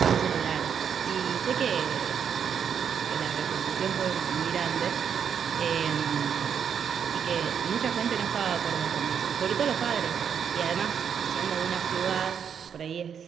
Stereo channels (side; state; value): left; quieter; 7.7 dB